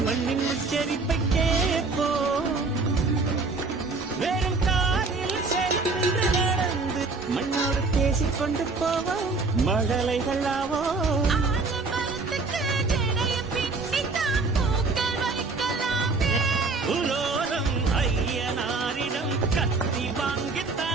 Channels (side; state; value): left; quieter; 3.9 dB